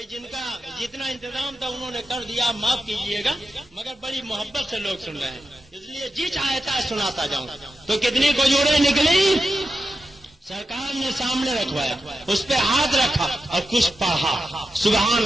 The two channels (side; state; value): both; normal; correlation 0.90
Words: جن کا جتنا انتظام تھا انہوں نے کر دیا، معاف کیجیے گا، مگر بڑی محبت سے لوگ سن رہے ہیں اس لیے جی چاہتا ہے سناتا جاؤں. تو کتنی کھجوریں نکلی؟ سرکار نے سامنے رکھوایا، اس پہ ہاتھ رکھا اور کچھ پڑھا. سبحان